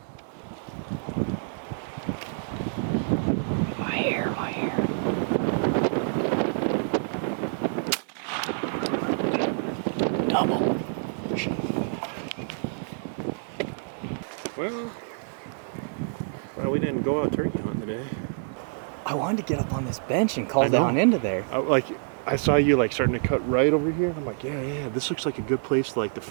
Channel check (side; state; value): left; silent; digital silence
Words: My hair. Double. Well, we didn't go out turkey hunting today. I wanted to get up on this bench and call I know. down into there. I saw you like starting to cut right over here. I'm like, yeah, this looks like a good place to like the